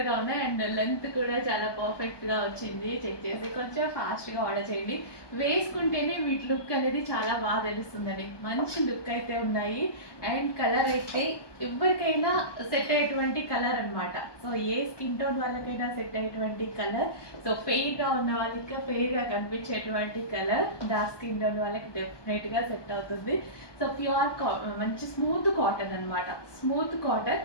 ఉన్నాయి. అండ్ లెంత్ కూడా చాలా పర్ఫెక్ట్గా వచ్చింది. చెక్ చేసి కొంచెం ఫాస్ట్గా ఆర్డర్ చేయండి. వేసుకుంటేనే వీటి లుక్ అనేది చాలా బాగా తెలుస్తుందండి. మంచి లుక్ అయితే ఉన్నాయి. అండ్ కలర్ అయితే ఎవరికైనా సెట్ అయ్యేటువంటి కలర్ అనమాట. సో ఏ స్కిన్ టోన్ వాళ్ళకైనా సెట్ అయ్యేటువంటి కలర్. సో ఫెయిర్గా ఉన్న వాళ్ళకి ఫెయిర్గా కనిపించేటువంటి కలర్, డార్క్ స్కిన్ టోన్ వాళ్ళకి డెఫినెట్గా సెట్ అవుతుంది. సో ప్యూర్ మంచి స్మూత్ కాటన్ అనమాట, స్మూత్ కాటన్.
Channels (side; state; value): right; late; 1.2 ms